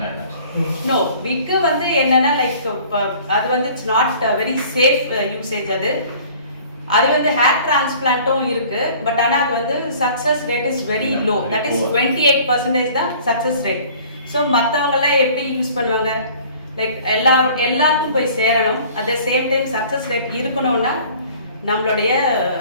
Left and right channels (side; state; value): both; inverted; correlation -0.50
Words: like that. No, wig வந்து என்னன்னா, லைக் அது வந்து it's not very safe usage. அது வந்து hair டிரான்ஸ்பிளான்ட்டும் இருக்கு, but ஆனால் அது வந்து success rate is very low. That is 28% தான் சக்ஸஸ் ரேட். ஸோ மற்றவங்கெல்லாம் எப்படி யூஸ் பண்ணுவாங்க, லைக் எல்லாருக்கும் போய் சேரணும், at the same time success rate இருக்கணும்னா நம்மளுடைய